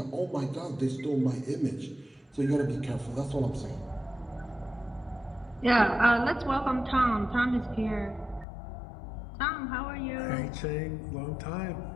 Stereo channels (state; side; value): drops out; right; at 8.5 s